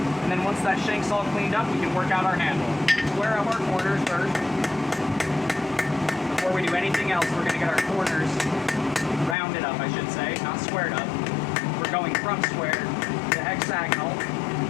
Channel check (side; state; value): right; drops out; at 9.3 s